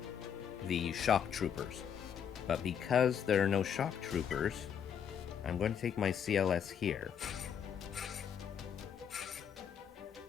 the shock troopers, but because there are no shock troopers, I'm going to take my CLS here.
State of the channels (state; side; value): quieter; right; 8.1 dB